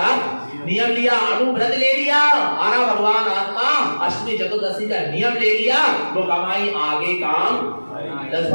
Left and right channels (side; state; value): both; inverted; correlation -1.00